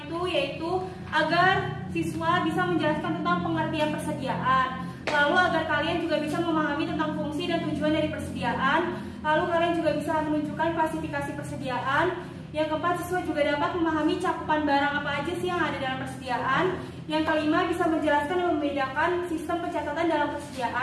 yaitu agar siswa bisa menjelaskan tentang pengertian persediaan. Lalu agar kalian juga bisa memahami tentang fungsi dan tujuan dari persediaan. Lalu kalian juga bisa menunjukkan klasifikasi persediaan. Yang keempat, siswa juga dapat memahami cakupan barang apa aja sih yang ada dalam persediaan. Yang kelima, bisa menjelaskan dan membedakan sistem pencatatan dalam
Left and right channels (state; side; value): identical; both; correlation 1.00